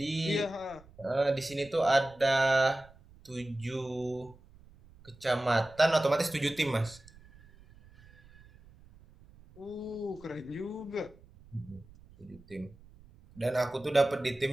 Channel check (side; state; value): right; noise; rumble, 24 dB below the sound